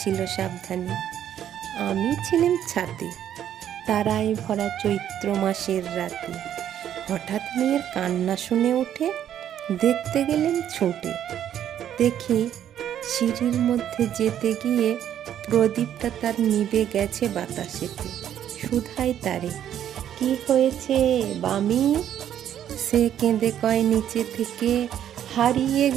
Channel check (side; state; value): left; quieter; 10.4 dB